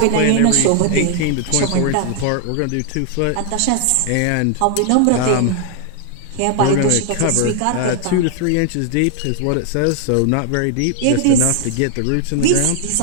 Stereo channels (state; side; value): different; both; correlation 0.00